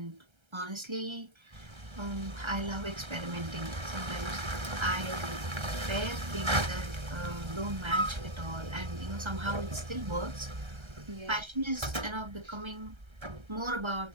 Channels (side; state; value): left; late; 1.3 ms